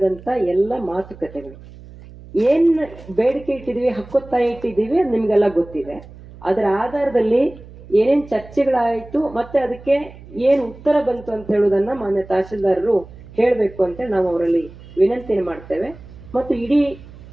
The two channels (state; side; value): noise; right; hum, 19 dB below the sound